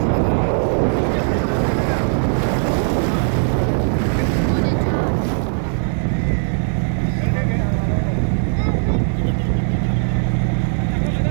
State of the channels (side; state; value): left; silent; 67 dB below the other